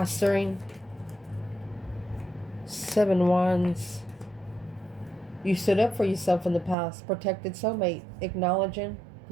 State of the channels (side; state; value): left; drops out; at 6.8 s